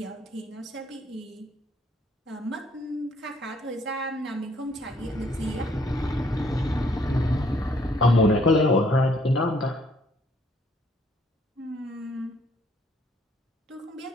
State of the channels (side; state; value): both; normal; correlation 0.65